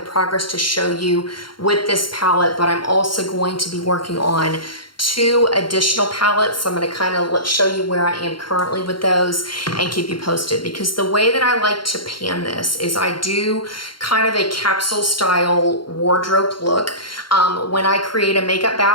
progress to show you with this palette, but I'm also going to be working on 2 additional palettes. So I'm going to kind of show you where I am currently with those and keep you posted, because the way that I like to pan this is I do kind of a capsule style wardrobe look. When I create a makeup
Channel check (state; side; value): late; right; 0.73 ms